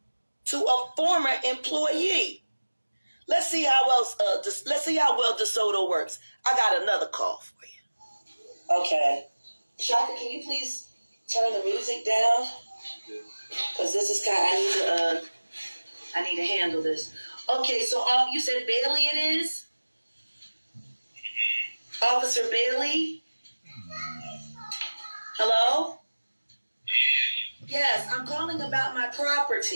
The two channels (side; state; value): both; inverted; correlation -1.00